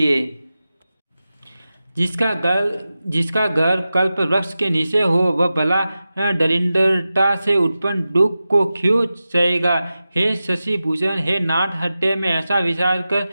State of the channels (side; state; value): both; inverted; correlation -0.94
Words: जिसका घर कल्प वृक्ष के नीचे हो वह भला दरिद्रता से उत्पन्न दुख को क्यों सहेगा। हे शशि भूषण, हे नाथ, हृदय में ऐसा विचार कर